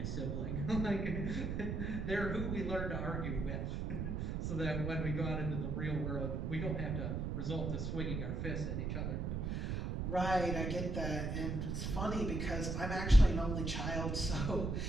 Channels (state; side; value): noise; right; rumble, 1 dB below the sound